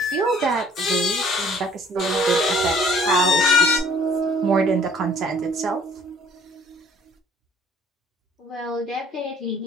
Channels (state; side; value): normal; both; correlation 0.57